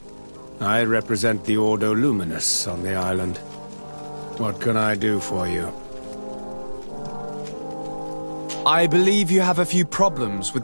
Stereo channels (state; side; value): inverted; both; correlation -1.00